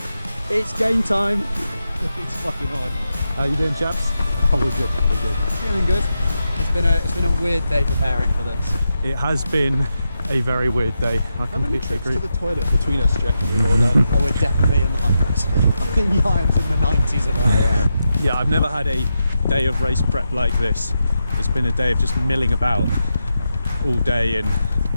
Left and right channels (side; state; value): both; inverted; correlation -0.87